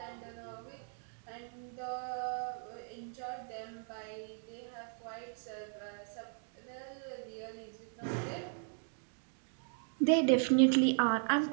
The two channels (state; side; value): silent; left; 53 dB below the other